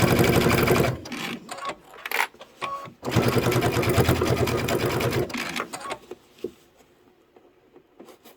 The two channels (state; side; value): identical; both; correlation 1.00